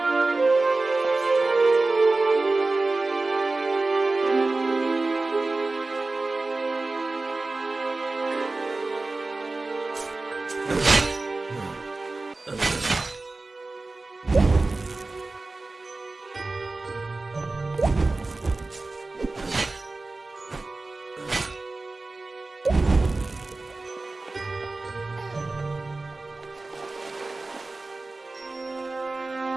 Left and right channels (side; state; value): left; quieter; 3.3 dB